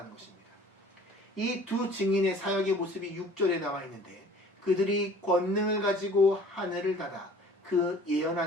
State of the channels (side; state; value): both; normal; correlation 0.50